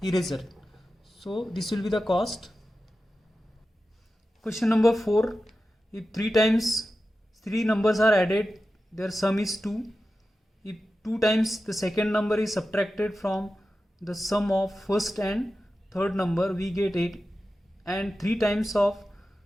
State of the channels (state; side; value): normal; both; correlation 0.93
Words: eraser. So this will be the cost. Question number 4. If 3 times 3 numbers are added, their sum is 2. If 2 times the second number is subtracted from the sum of first and third number, we get 8. And 3 times of